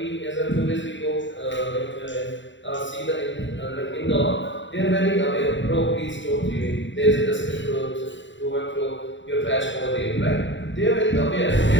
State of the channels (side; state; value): right; late; 0.54 ms